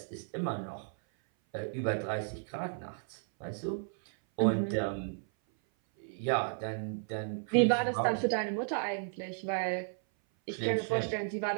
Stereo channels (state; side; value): silent; left; 55 dB below the other